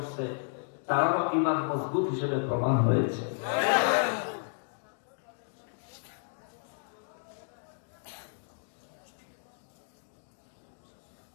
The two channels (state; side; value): silent; right; digital silence